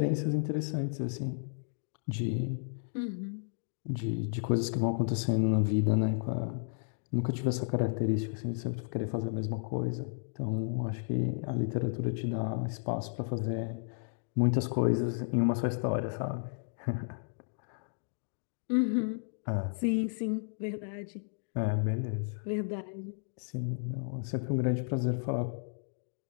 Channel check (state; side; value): silent; right; digital silence